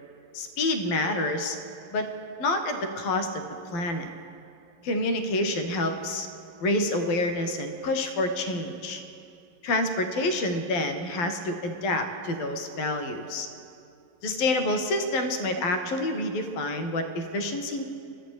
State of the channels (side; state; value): right; late; 11 ms